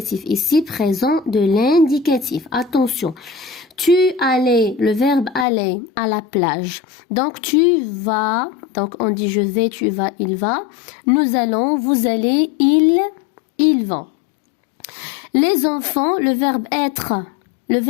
Ici, présent de l'indicatif. Attention. Tu allais, le verbe aller à la plage. Donc, tu vas. Donc, on dit je vais, tu vas, il va. Nous allons, vous allez, ils vont. Les enfants, le verbe être. Le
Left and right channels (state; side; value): drops out; right; at 5.5 s